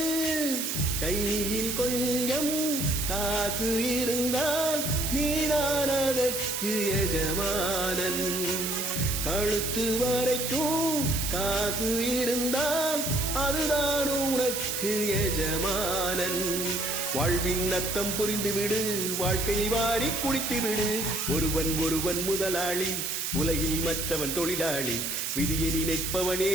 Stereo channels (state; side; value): noise; right; hiss, 2 dB below the sound